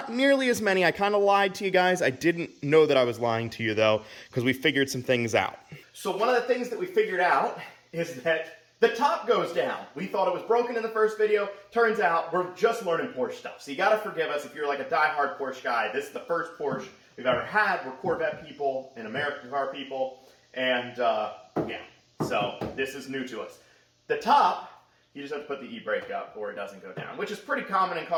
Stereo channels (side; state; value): both; identical; correlation 1.00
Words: nearly as many. I kind of lied to you guys. I didn't know that I was lying to you, though, because we figured some things out. So one of the things that we figured out is that the top goes down. We thought it was broken in the first video. Turns out we're just learning Porsche stuff. So you got to forgive us if you're like a die-hard Porsche guy. This is the first Porsche we've ever had. We're Corvette people and American car people. And yeah, so this is new to us. The top, you just have to put the e-brake up or it doesn't go down, which is pretty common in